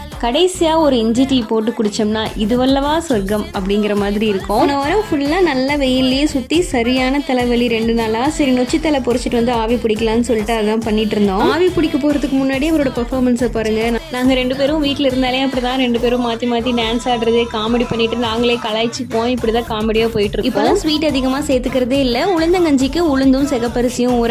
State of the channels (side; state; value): both; identical; correlation 1.00